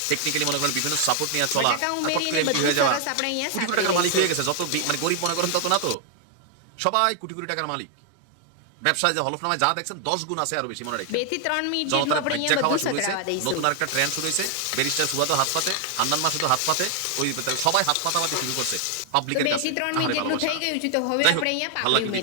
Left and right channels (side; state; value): both; different; correlation 0.00